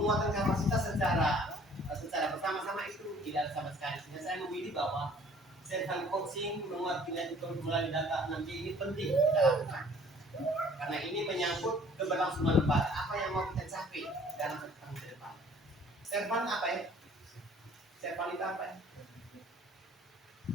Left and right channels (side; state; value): both; normal; correlation 0.54